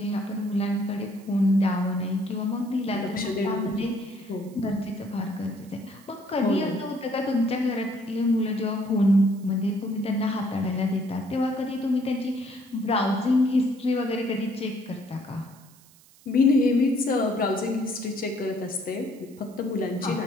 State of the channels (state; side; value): noise; right; hiss, 27 dB below the sound